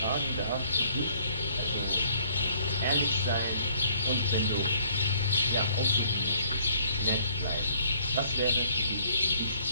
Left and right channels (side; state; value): both; inverted; correlation -0.61